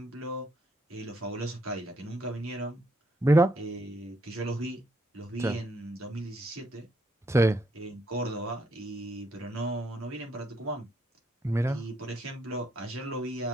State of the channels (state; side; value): normal; both; correlation 0.74